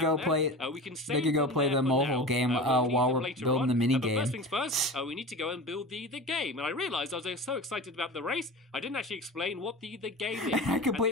play. We can they could go play the mole game while we're building the mini game. First things first, we need to go and build the game. And I realised I was so excited about the race, I didn't actually explain what the game is. I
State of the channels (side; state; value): both; normal; correlation 0.32